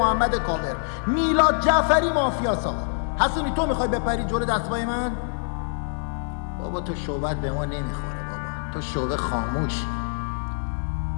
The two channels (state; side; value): silent; right; digital silence